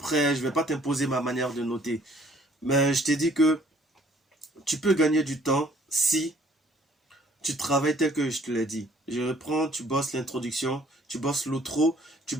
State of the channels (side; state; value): both; normal; correlation 0.59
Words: je ne vais pas t'imposer ma manière de noter. Mais je t'ai dit que tu peux gagner du temps si tu travailles tel que je te l'ai dit. Je reprends, tu bosses l'introduction, tu bosses l'outro, tu